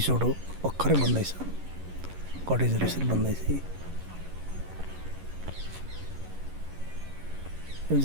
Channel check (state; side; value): late; left; 11 ms